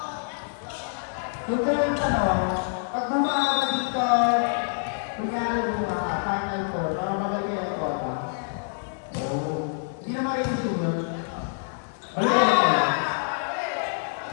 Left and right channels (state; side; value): silent; right; digital silence